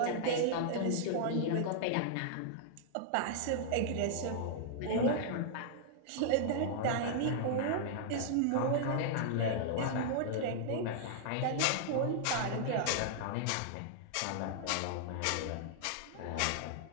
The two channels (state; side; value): different; both; correlation -0.01